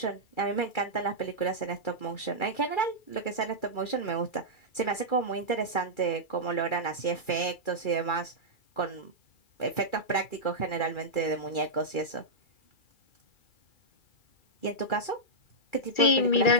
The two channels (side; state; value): right; late; 2.3 ms